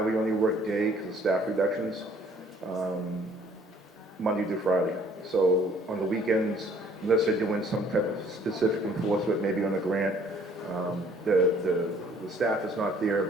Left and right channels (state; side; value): normal; both; correlation 0.59